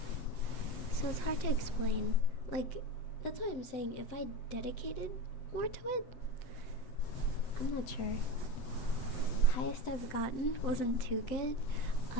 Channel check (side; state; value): right; late; 7.9 ms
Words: So it's hard to explain. That's why I'm saying if I dedicated more to it, I'm not sure. Highest I've gotten wasn't too good.